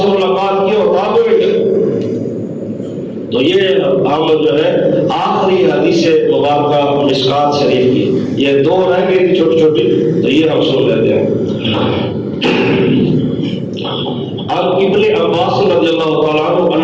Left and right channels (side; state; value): both; identical; correlation 1.00